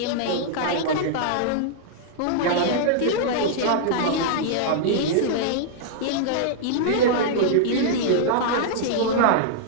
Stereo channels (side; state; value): both; different; correlation -0.01